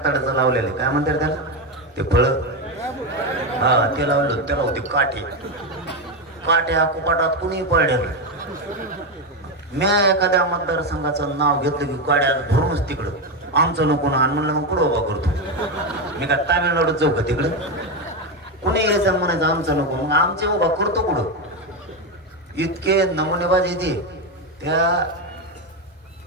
लावलेलं काय म्हणतात त्याला ते फळं. हा ते लावलं. त्याला होती काठी. काट्या कुपाटात कुणी पडलेलं. मी एखाद्या मतदारसंघाचं नाव घेतलं की काड्या भरूनच तिकडं आमचं नको ना. म्हणलं मग कुठं उभा करतो मी. का तामिळनाडूत जाऊ का तिकडं. कुणी यायचं म्हणायचं आमचं नको. मग आमचे उभा करतो कुठं. इतके नमुनेबाज येते. त्या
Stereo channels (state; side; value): normal; both; correlation 0.11